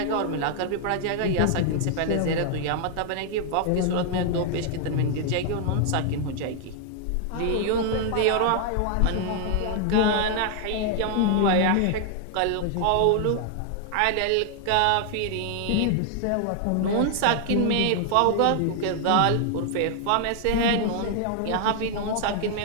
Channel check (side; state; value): both; different; correlation 0.00